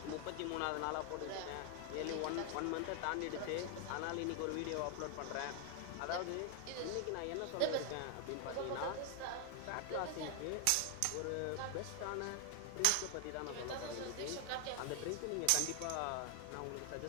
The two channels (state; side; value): different; both; correlation 0.00